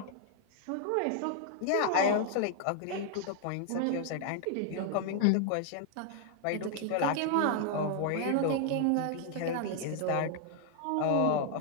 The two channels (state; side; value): different; both; correlation 0.00